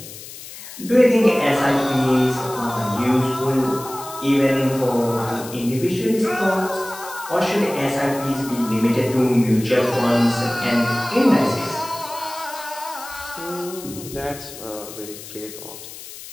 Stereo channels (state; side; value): noise; left; hiss, 14 dB below the sound